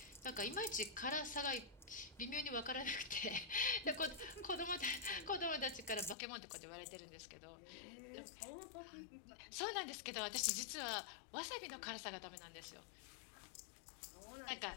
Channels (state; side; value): drops out; right; at 6.2 s